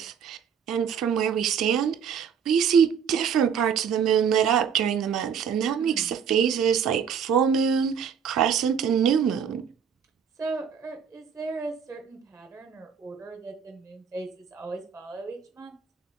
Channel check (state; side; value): quieter; left; 7.5 dB